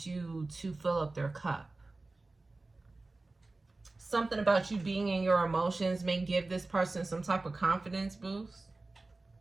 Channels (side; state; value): left; quieter; 3.3 dB